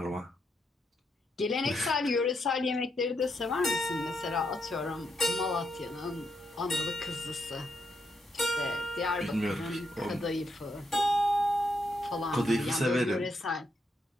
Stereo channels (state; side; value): normal; both; correlation 0.80